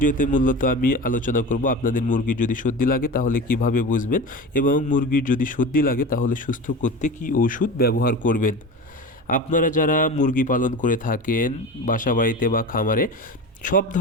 মূলত আমি আলোচনা করব আপনাদের মুরগির যদি সর্দি লাগে তাহলে কিভাবে বুঝবেন, এবং মুরগির যদি সর্দি লাগে তাহলে সুস্থ করতে কি ওষুধ ব্যবহার করবেন। আপনারা যারা মুরগি পালন করে থাকেন বাসা বাড়িতে বা খামারে, সব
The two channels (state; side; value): normal; both; correlation 0.30